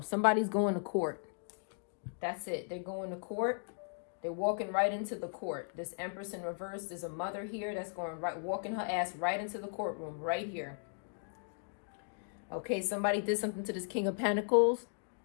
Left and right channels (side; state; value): right; silent; digital silence